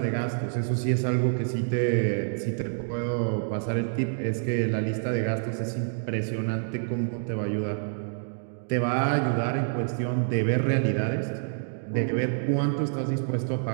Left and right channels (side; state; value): left; silent; digital silence